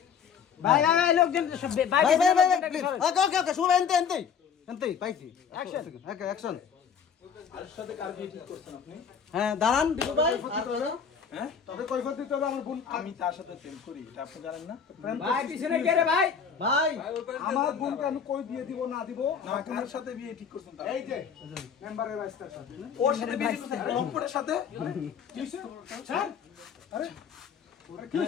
ভাই লোকজন ভাই প্লিজ ওকে সবাই এনতে পাইছি অ্যাকশন আর সাথে কার বিয়ে ঠিক করছেন আপনি হ্যাঁ দাঁড়ান দীপু ভাই আর হ্যাঁ তবে কৈফত দিতে হবে আমার বোন আমি তার সাথে প্রেম করি এটা আপনি জানেন না ভাই পিছনে কে রে ভাই ভাই আমার বোনকে আমি কই বিয়ে দিব না দিব আপনার সাথে বিয়ে ঠিক করছেন এই যে মেম্বারের 22 তারিখ সাথে ওর সাথে বিয়ে ঠিক করছেন লম্পটের সাথে কি হইছে স্যার আরে কি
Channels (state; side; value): quieter; right; 7.0 dB